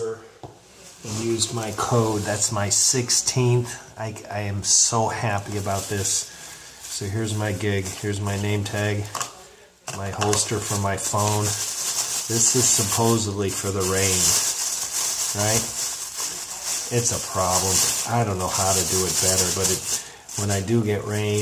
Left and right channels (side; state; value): both; identical; correlation 1.00